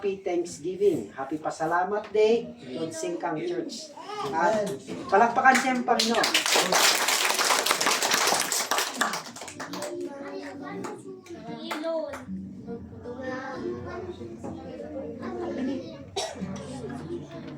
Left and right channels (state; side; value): identical; both; correlation 1.00